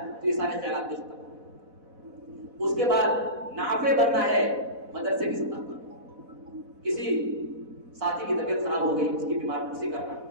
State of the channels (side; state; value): left; late; 4.1 ms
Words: تو یہ سارے خیالات بھی ختم. اس کے بعد نافع بننا ہے مدرسے کی سطح پر. کسی ساتھی کی طبیعت خراب ہو گئی، اس کی بیمار پرسی کرنا.